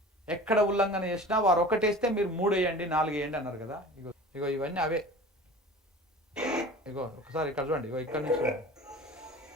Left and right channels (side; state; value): both; normal; correlation 0.39